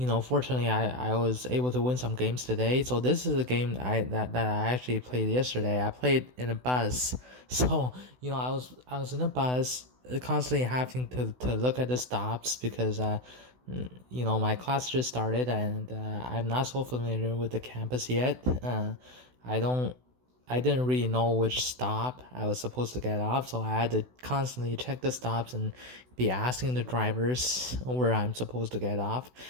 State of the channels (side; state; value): left; late; 16 ms